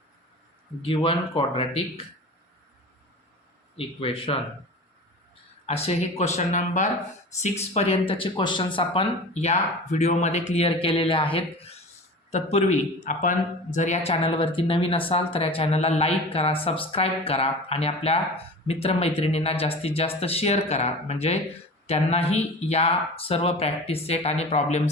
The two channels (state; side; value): normal; both; correlation 0.35